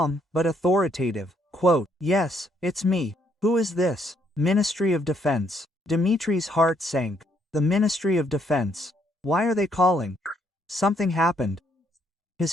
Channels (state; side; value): normal; both; correlation 0.71